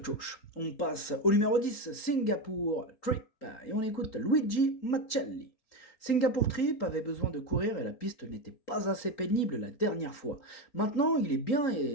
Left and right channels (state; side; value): late; right; 4.3 ms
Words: Chosh. On passe au numéro 10, Singapour Trip, et on écoute Luigi Macelli. Singapour Trip avait besoin de courir et la piste n'était pas assez pénible la dernière fois. Maintenant, il est bien